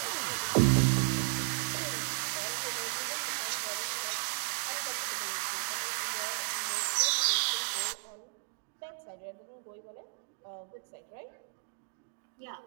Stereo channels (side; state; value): left; silent; digital silence